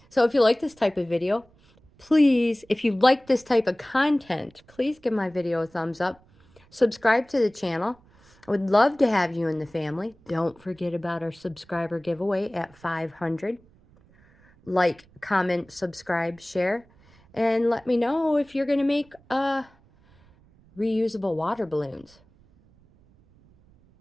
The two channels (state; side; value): noise; right; rumble, 29 dB below the sound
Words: So if you like this type of video, please, if you like this type of content, please give my video a thumbs up. Subscribe to the channel. I would love to have you in the family. Don't forget about our subscriber giveaway at 500. Like, comment, subscribe, share, and let me know if you're going to make reusable water balloons.